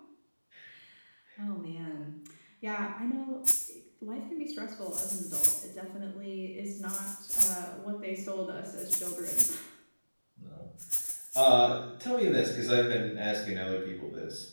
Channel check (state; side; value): inverted; both; correlation -1.00